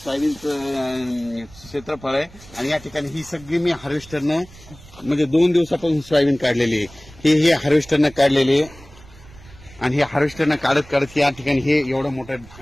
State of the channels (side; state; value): right; noise; rumble, 21 dB below the sound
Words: क्षेत्रफळ आहे आणि या ठिकाणी ही सगळी मी हार्वेस्टरनं म्हणजे 2 दिवसापासून सोयाबीन काढलेली आहे. हे हार्वेस्टरनं काढलेली आहे आणि हे हार्वेस्टरनं काढत या ठिकाणी हे एवढं मोठं